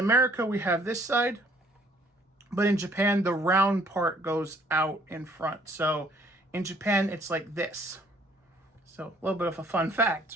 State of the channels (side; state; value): both; normal; correlation 0.61